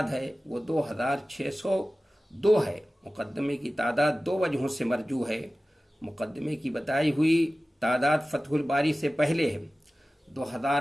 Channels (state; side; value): normal; both; correlation 0.96